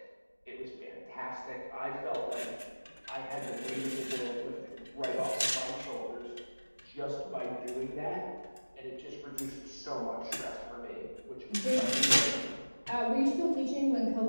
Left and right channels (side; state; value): both; inverted; correlation -1.00